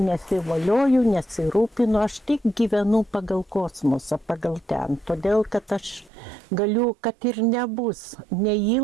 nesirūpinu, aš tik gyvenu pagal kosmosą, pagal ten. Todėl, kad aš galiu, kad ir nebus,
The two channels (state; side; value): drops out; left; at 6.1 s